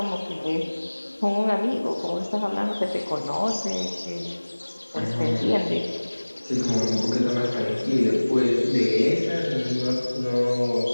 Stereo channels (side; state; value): both; inverted; correlation -1.00